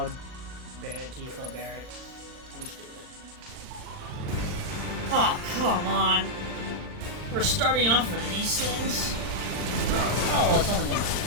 Barrett, Tifa, Barrett. Let's do it. Oh, come on. We're starting off with these things? Oh, well, it's only one.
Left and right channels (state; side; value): late; left; 39 ms